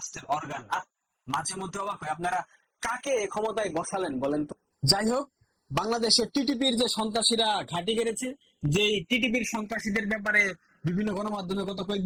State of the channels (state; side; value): identical; both; correlation 1.00